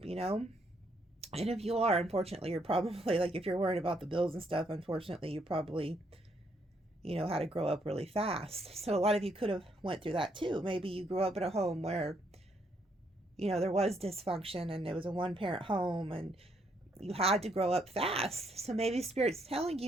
And if you are, unfortunately, you're probably like, if you're worried about the bills and stuff, unfortunately, you probably had to grow up really fast. So a lot of you could have went through that too. Maybe you grew up in a home where there was dysfunction and it was a one-parent home and you had to grow up fast. So maybe Spirit's telling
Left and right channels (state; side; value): normal; both; correlation 0.72